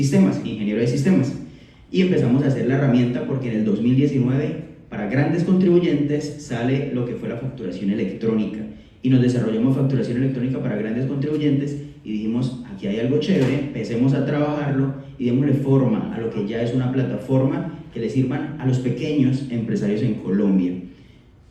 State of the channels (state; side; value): identical; both; correlation 1.00